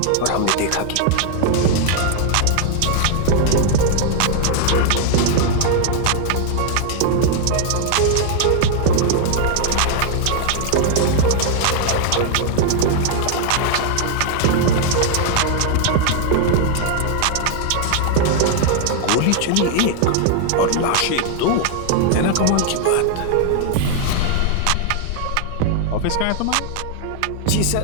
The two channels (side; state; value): both; different; correlation 0.00